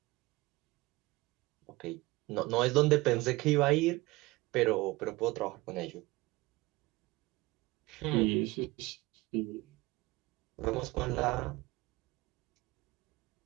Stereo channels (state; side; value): quieter; left; 21.2 dB